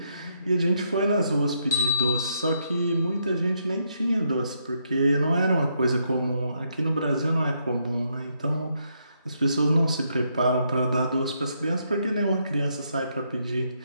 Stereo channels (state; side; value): inverted; both; correlation -0.76